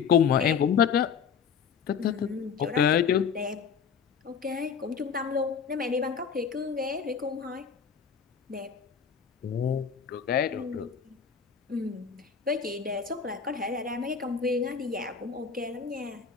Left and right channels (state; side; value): quieter; right; 6.7 dB